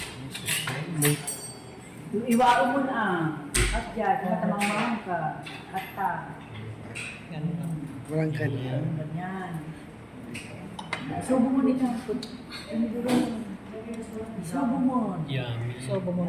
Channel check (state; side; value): identical; both; correlation 1.00